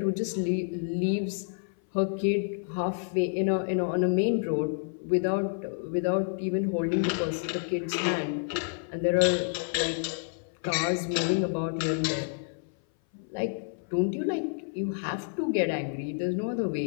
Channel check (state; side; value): silent; right; 57 dB below the other